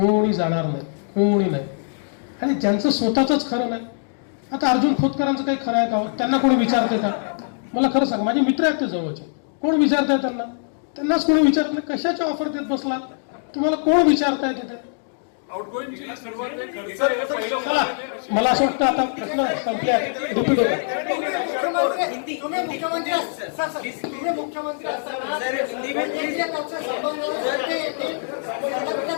जाणार नाही, कोणी नाही। आणि ज्यांचं स्वतःच खरं नाही, आता अर्जुन खोतकरांचं काही खरं आहे का? त्यांना कोणी विचारते का? मला खरं सांग, माझे मित्र आहेत ते जवळचे, कोण विचारताय त्यांना? त्यांनाच कोणी विचारत नाही। कशाच्या ऑफर देत बसला? तुम्हाला कोण विचारताय तिथे? मला असं वाटतं आता प्रश्न संपल्या, रिपीट होता।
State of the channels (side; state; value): right; silent; digital silence